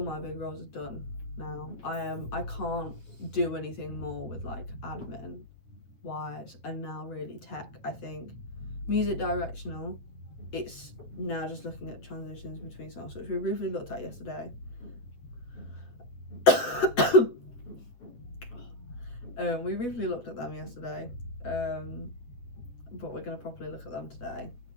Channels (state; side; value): late; right; 8.2 ms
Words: my big roles are done now. I can't do anything more with like admin wise, and now really tech. I think music directional, it's now just looking at transitions between songs, which we briefly looked at yesterday. We briefly looked at them yesterday, but we're going to properly look at them today.